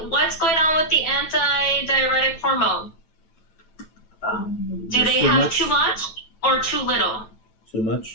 what's going on with the antidiuretic hormone? Do they have too much or too little? Too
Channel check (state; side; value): late; right; 9.1 ms